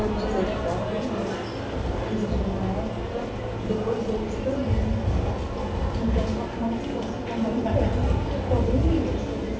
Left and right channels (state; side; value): identical; both; correlation 1.00